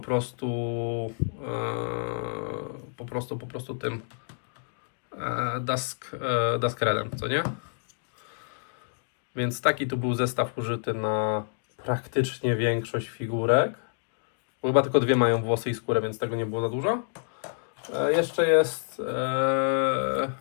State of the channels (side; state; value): right; silent; digital silence